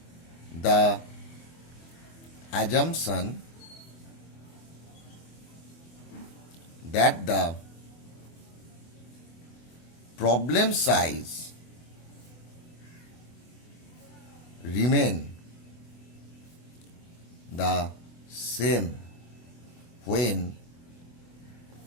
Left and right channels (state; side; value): late; right; 24 ms